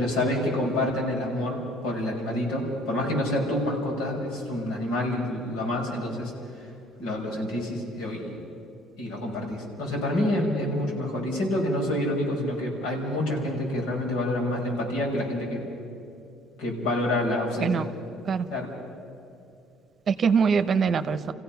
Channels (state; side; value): normal; both; correlation 0.59